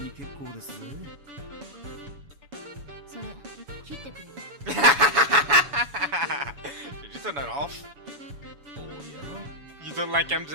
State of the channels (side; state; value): left; late; 7.1 ms